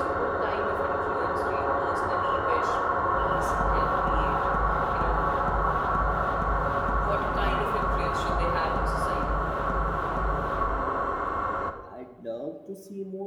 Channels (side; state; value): both; identical; correlation 1.00